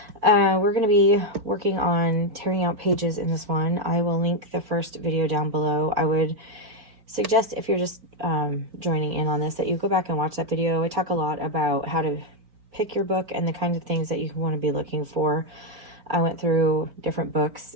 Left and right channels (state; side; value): late; left; 4.2 ms